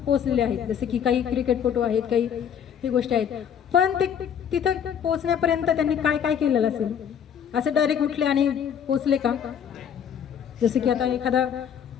पोहोचलेले आहेत. जसे की काही क्रिकेटपटू आहेत, काही ही गोष्टी आहेत. पण ते तिथं पोहोचण्यापर्यंत त्यांनी काय काय केलेलं असेल? असं डायरेक्ट उठले आणि पोहोचले का? जसं की आता एखादा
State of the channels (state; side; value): quieter; right; 8.3 dB